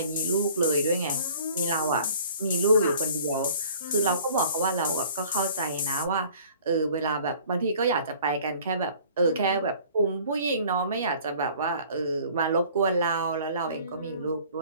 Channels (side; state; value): both; inverted; correlation -0.51